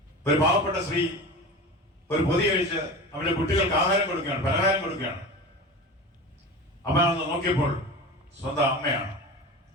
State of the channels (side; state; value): both; normal; correlation 0.31